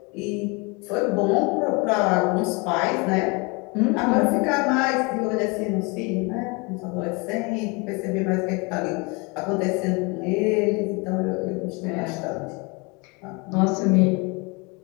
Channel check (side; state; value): right; quieter; 28.9 dB